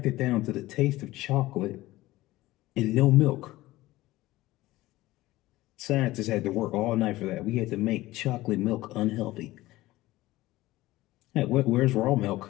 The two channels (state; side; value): quieter; right; 17.7 dB